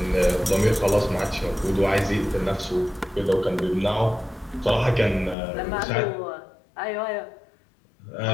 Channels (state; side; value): drops out; right; at 5.4 s